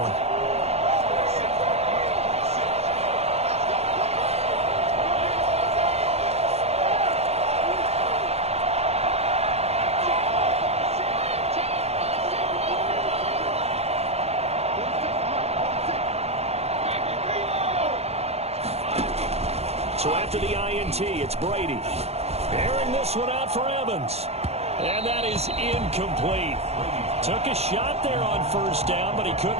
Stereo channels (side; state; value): left; late; 0.30 ms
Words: So after the INT, it's Brady. Airing this one out for Evans. And that is incomplete. Took a shot there on 1st down, but he